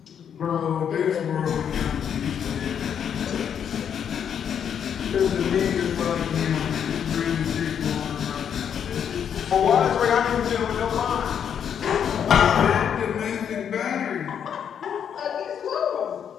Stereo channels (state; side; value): quieter; right; 8.3 dB